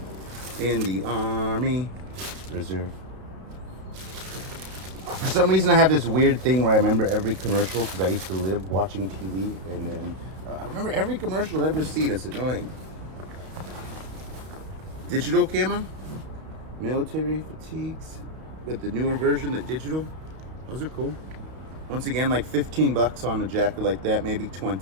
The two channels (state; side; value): late; left; 32 ms